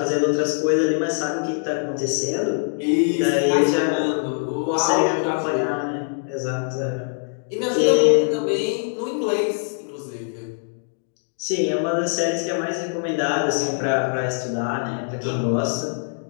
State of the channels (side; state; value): right; silent; digital silence